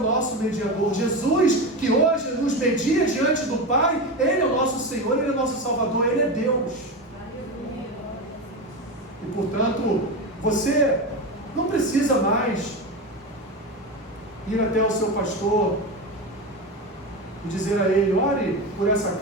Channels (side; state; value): both; normal; correlation 0.20